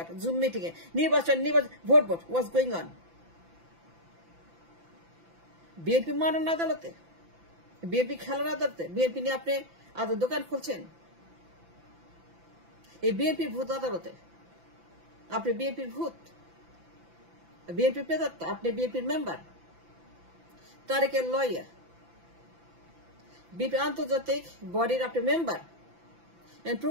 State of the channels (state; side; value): late; left; 5.9 ms